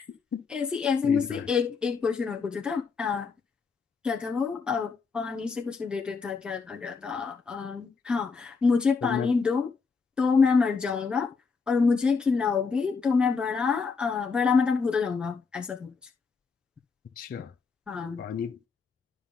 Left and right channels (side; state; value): right; quieter; 5.0 dB